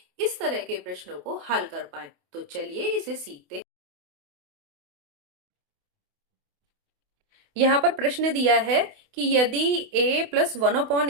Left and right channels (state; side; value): late; left; 28 ms